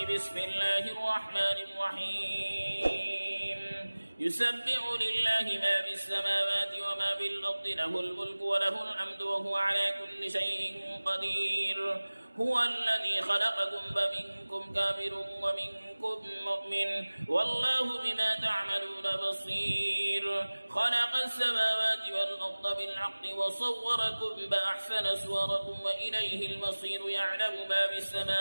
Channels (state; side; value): inverted; both; correlation -1.00